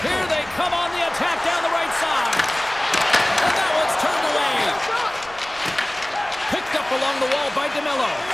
Here they come on the attack down the right side. And that one's turned away. Picked up along the wall by DeMello.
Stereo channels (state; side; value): noise; right; rumble, 23 dB below the sound